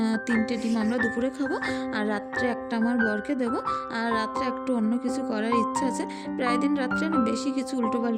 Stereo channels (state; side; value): identical; both; correlation 1.00